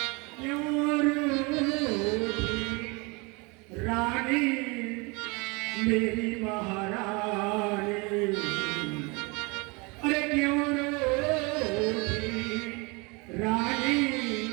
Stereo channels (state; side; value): quieter; left; 28.3 dB